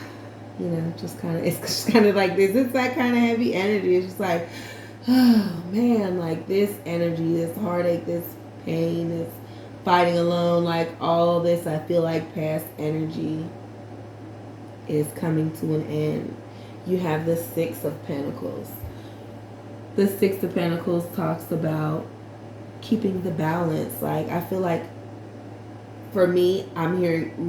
you know, just kind of, it's just kind of like this. It's that kind of heavy energy. It's just like, oh man, like this energy, this heartache, this pain, this fighting alone, like all this, I feel like past energy is coming to an end. You have the Six of Pentacles. The Six of Pentacles talks about keeping the balance. Like, I feel like for me, I'm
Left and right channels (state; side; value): identical; both; correlation 1.00